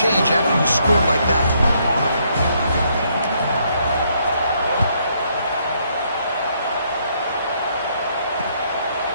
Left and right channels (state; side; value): inverted; both; correlation -0.71